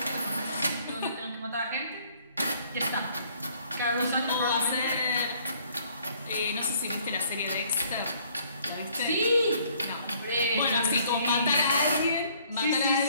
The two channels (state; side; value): inverted; both; correlation -0.61